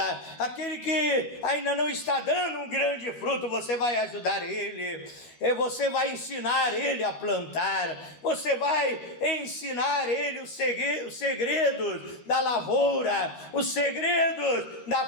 aquele que ainda não está dando um grande fruto. Você vai ajudar ele, você vai ensinar ele a plantar, você vai ensinar ele os segredos da lavoura, os segredos da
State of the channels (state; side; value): late; right; 13 ms